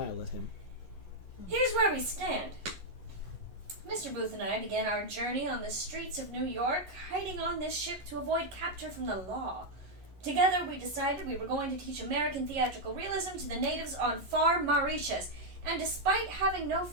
at him. Here's where we stand. Mr. Booth and I began our journey on the streets of New York, hiding on this ship to avoid capture from the law. Together, we decided we were going to teach American theatrical realism to the natives on far Mauritius. And despite having no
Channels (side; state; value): left; late; 11 ms